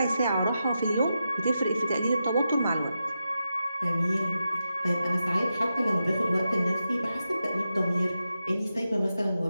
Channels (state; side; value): inverted; both; correlation -0.89